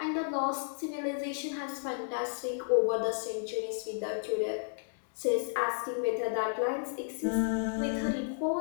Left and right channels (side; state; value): right; silent; digital silence